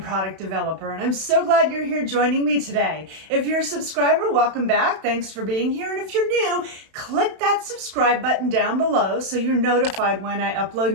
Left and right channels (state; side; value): late; left; 31 ms